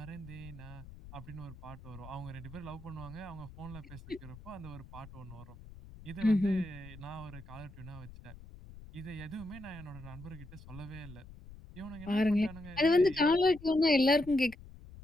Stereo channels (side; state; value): left; noise; rumble, 17 dB below the sound